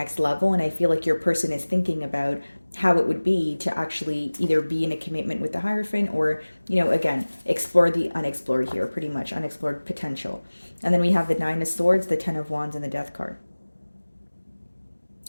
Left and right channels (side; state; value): both; inverted; correlation -1.00